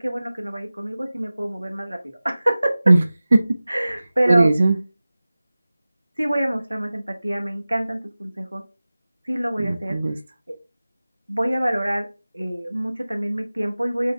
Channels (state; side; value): inverted; both; correlation -0.97